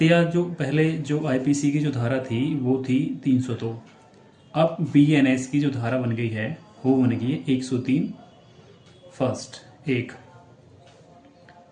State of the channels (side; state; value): both; identical; correlation 1.00